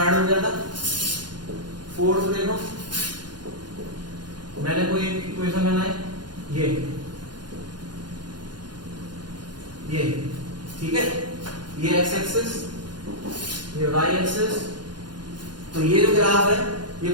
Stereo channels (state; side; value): late; left; 0.71 ms